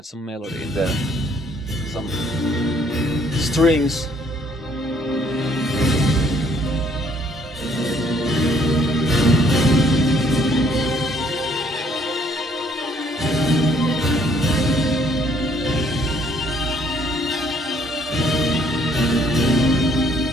some melody in there, some strings.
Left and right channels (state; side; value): normal; both; correlation 0.64